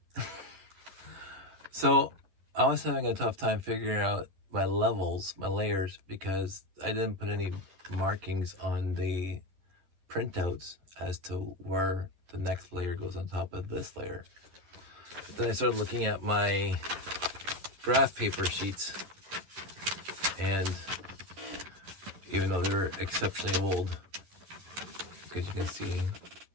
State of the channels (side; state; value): left; late; 11 ms